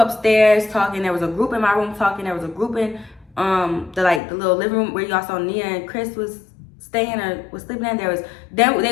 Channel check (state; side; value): drops out; right; at 4.2 s